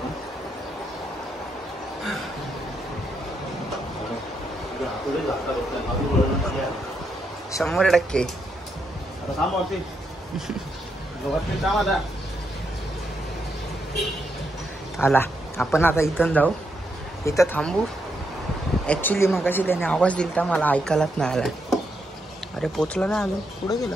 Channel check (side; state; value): both; normal; correlation 0.80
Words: हातोडे जाता बघतोय. 100%. आता थांब होती. गवतली काम आता. आला. आपण आता इथून जाऊ, इथं थांबू. ॲक्च्युली मगाशी त्याने आवाज दिला मला ऐकायलाच नाही आला. अरे पोचला नाही अजून, पुढे